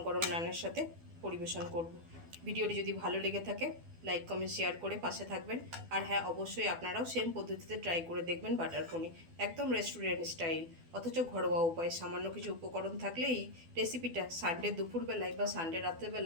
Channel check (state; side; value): late; left; 12 ms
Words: গরম নানের সাথে পরিবেশন করব। ভিডিওটি যদি ভালো লেগে থাকে লাইক কমেন্ট শেয়ার করে পাশে থাকবেন। আর হ্যাঁ, অবশ্যই আপনারাও সেম পদ্ধতিতে ট্রাই করে দেখবেন বাটার পনির, একদম রেস্টুরেন্ট স্টাইল, অথচ ঘরোয়া উপায়। সামান্য কিছু উপকরণ থাকলে এই রেসিপিটা সানডে দুপুরবেলায় বা সানডে